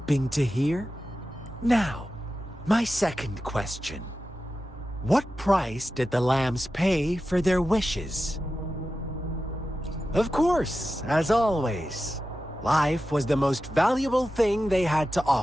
to hear? Now, my second question. What price did the lambs pay for their wishes? Of course, as always, life was the most valuable thing they had to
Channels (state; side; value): normal; both; correlation 0.92